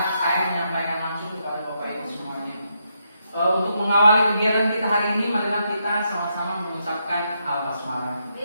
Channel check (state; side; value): inverted; both; correlation -0.80